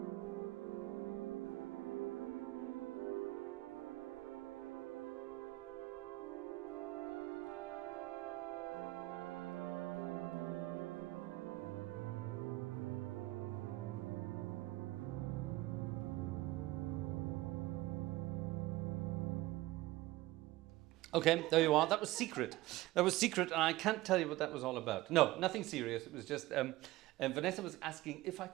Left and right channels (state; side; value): quieter; left; 18.0 dB